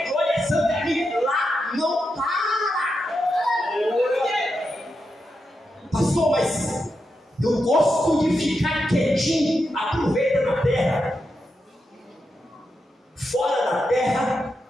glória, é santa, é amém. Lá não Eu gosto de ficar quietinho. Aproveita na terra. Fora da terra,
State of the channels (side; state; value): both; normal; correlation 0.86